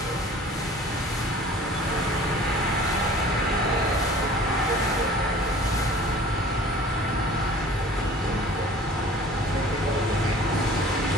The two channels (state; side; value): normal; both; correlation 0.46